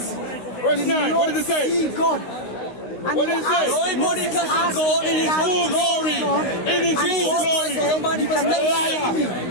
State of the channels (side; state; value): right; late; 16 ms